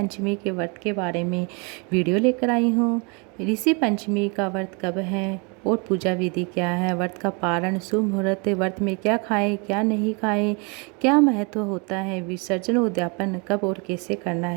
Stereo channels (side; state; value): left; quieter; 32.4 dB